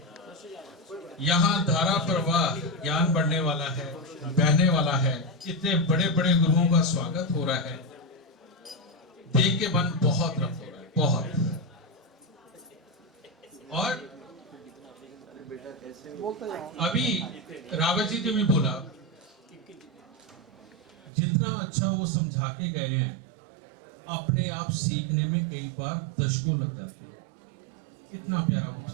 यहाँ धारा प्रवाह ज्ञान बढ़ने वाला है, बहने वाला है। इतने बड़े बड़े गुरुओं का स्वागत हो रहा है, देख के मन बहुत रफ्त हो रहा है, बहुत। और अभी रावत जी ने भी बोला, जितना अच्छा वो समझा के गए हैं, अपने आप सीखने में कई बार दशकों लग जाते हैं। इतना प्यारा वो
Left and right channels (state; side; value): drops out; left; at 21.1 s